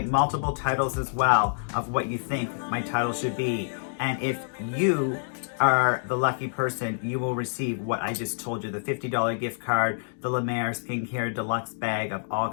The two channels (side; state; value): right; silent; digital silence